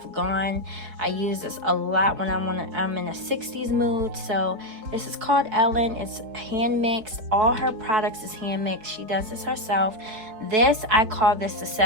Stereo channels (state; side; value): late; left; 4.6 ms